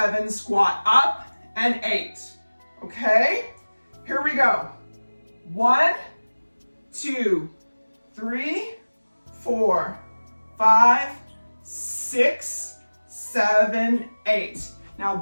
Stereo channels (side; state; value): both; inverted; correlation -1.00